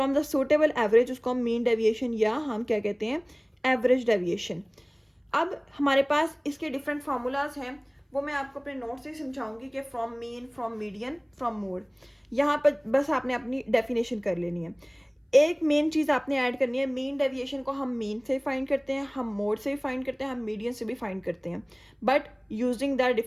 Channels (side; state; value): both; identical; correlation 1.00